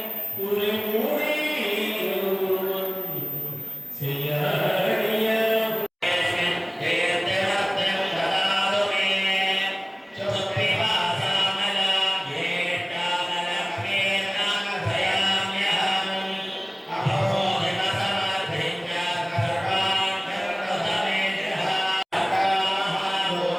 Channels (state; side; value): identical; both; correlation 1.00